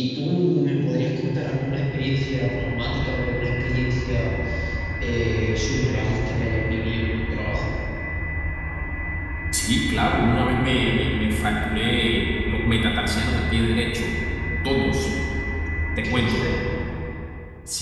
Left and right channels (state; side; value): identical; both; correlation 1.00